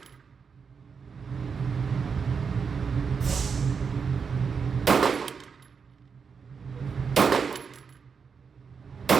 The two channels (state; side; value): quieter; left; 5.9 dB